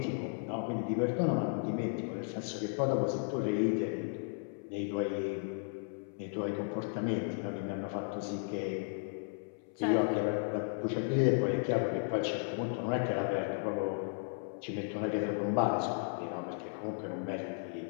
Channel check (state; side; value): silent; right; 55 dB below the other